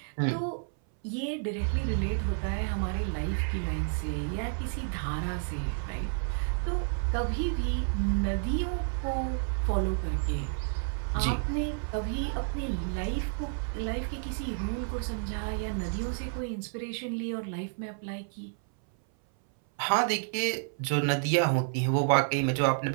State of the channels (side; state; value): left; silent; 58 dB below the other